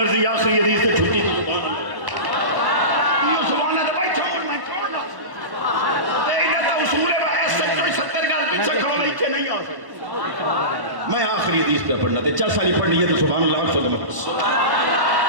آخری حدیث سے چھٹی سبحان اللہ بھائی چھوڑ میں چھوڑ نہ نہیں آ سکتا میں آخری حدیث پہ پڑھنا تھے 4 سالی پڑھنی ہے تو سبحان اللہ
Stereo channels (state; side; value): late; left; 1.1 ms